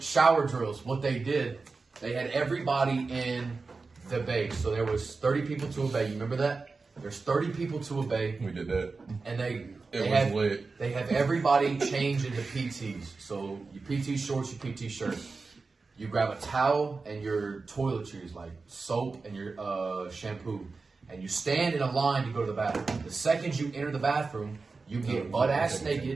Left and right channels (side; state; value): left; quieter; 4.1 dB